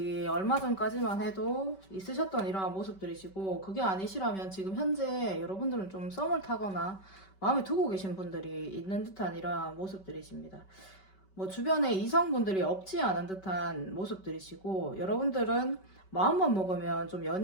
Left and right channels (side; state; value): right; late; 5.2 ms